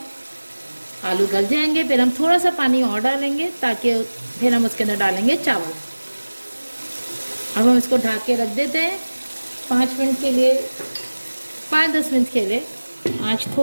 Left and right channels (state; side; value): inverted; both; correlation -1.00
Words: आलू गल जाएंगे फिर हम थोड़ा सा पानी और डालेंगे ताकि फिर हम उसके अंदर डालेंगे चावल। अब हम इसको ढक के रख देते हैं 5 मिनट के लिए, 5-10 मिनट के लिए। आँच